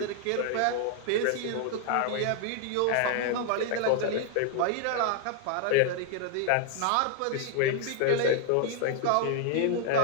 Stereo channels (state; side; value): different; both; correlation 0.00